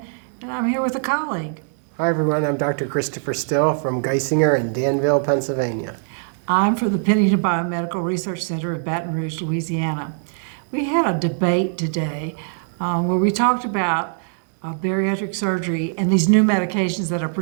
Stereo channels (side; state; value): left; silent; 64 dB below the other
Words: and I'm here with a colleague. Hi everyone, I'm Dr. Christopher Still from Geisinger in Danville, Pennsylvania. I'm from the Pennington Biomedical Research Center in Baton Rouge, Louisiana. We had a debate today where we talked about bariatric surgery and these new medications that are